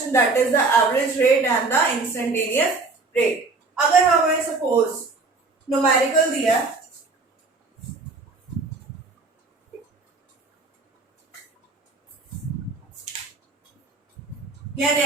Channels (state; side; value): quieter; left; 3.8 dB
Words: that is the average rate and the instantaneous rate. अगर हमें सपोज न्यूमेरिकल दिया या